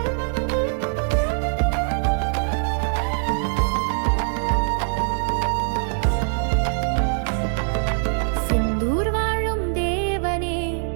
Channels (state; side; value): silent; left; 64 dB below the other